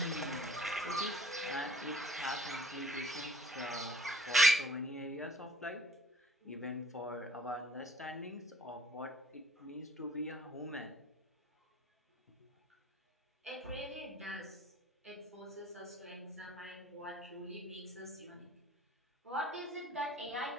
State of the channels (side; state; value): both; normal; correlation 0.55